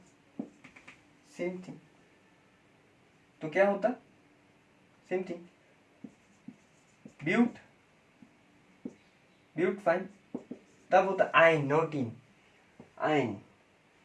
सेम थिंग, तो क्या होता, same thing, but, but, fine, तब होता आइन, नॉट इन, आइन,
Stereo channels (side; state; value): both; identical; correlation 1.00